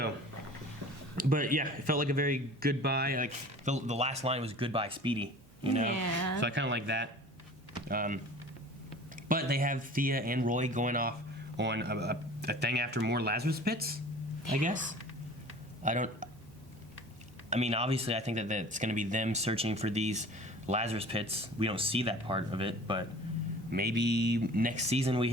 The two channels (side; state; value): both; normal; correlation 0.43